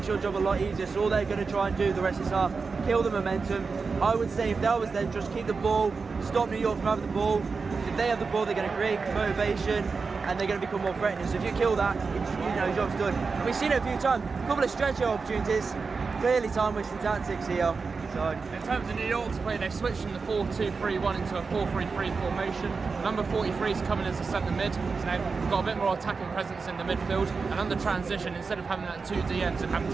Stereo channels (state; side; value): quieter; left; 4.7 dB